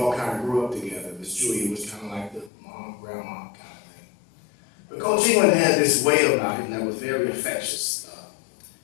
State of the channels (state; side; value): drops out; right; at 2.5 s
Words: kind of grew up together. Miss Julia was kind of like the mom, grandma kind of thing. But Coach England had this way about him that was very infectious.